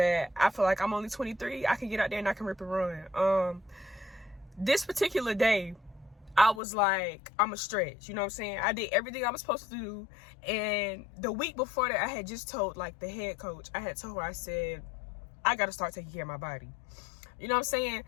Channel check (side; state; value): right; drops out; at 6.6 s